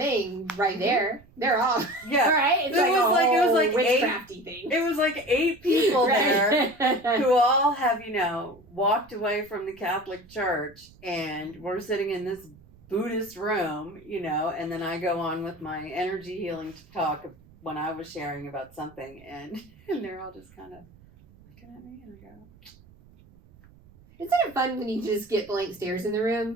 right there. They're all right. It's it was like witchcrafty thing. It was like 8 people there who all have, walked away from the Catholic Church, and we're sitting in this Buddhist room, and then I go on with my energy healing talk when I was sharing about something, and they're all just kind of looking at me, and I go, isn't it fun when you just get blank stares in the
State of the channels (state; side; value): noise; right; rumble, 25 dB below the sound